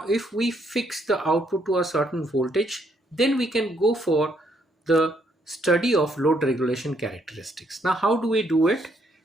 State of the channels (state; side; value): normal; both; correlation 0.72